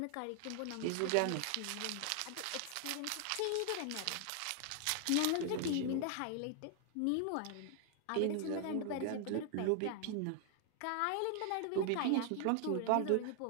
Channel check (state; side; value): different; both; correlation 0.00